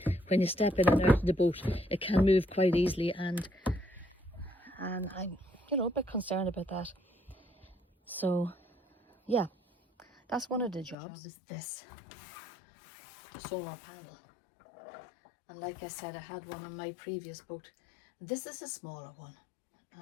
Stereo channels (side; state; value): right; drops out; at 11.0 s